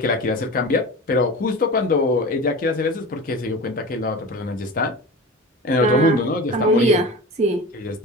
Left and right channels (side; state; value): both; normal; correlation 0.33